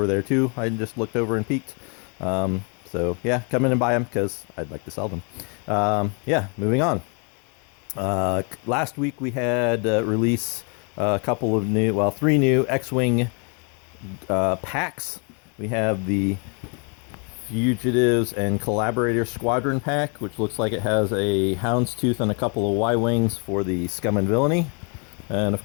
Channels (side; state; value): right; quieter; 37.0 dB